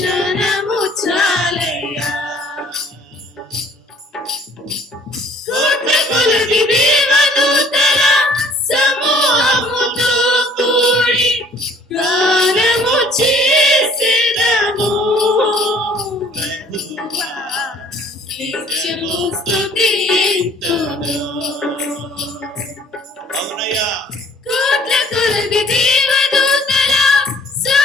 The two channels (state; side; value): normal; both; correlation 0.56